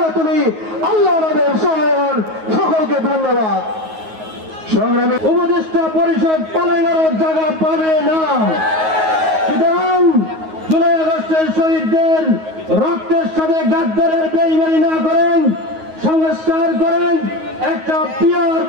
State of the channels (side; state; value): left; late; 9.4 ms